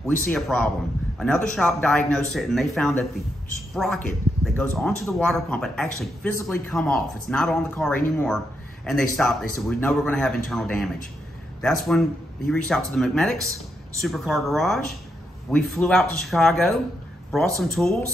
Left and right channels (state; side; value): normal; both; correlation 0.82